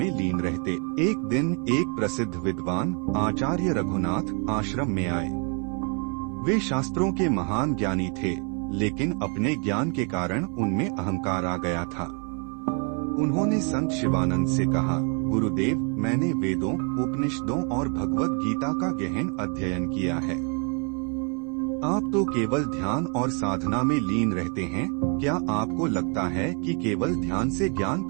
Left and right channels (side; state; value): left; quieter; 36.8 dB